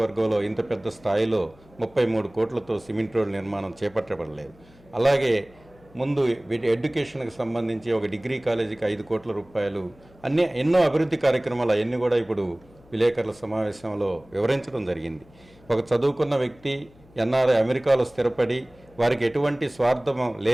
ఇంత పెద్ద స్థాయిలో 33 కోట్లతో సిమెంట్ రోడ్డు నిర్మాణం చేపట్టబడలేదు. అలాగే ముందు ఎడ్యుకేషన్కి సంబంధించి ఒక డిగ్రీ కాలేజీకి 5 కోట్ల రూపాయలు, ఎన్నో అభివృద్ధి కార్యక్రమాలు అవన్నీ కూడా ఇప్పుడు విలేకరుల సమావేశంలో వివరించడం జరిగింది. ఒక చదువుకున్న వ్యక్తి ఎన్ఆర్ఐ అమెరికాలో స్థిరపడి వారికి ఎటువంటి స్వార్థం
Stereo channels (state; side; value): noise; left; hum, 27 dB below the sound